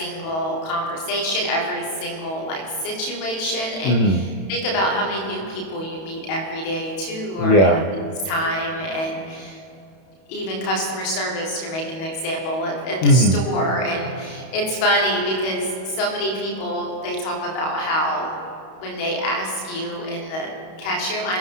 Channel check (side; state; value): right; late; 31 ms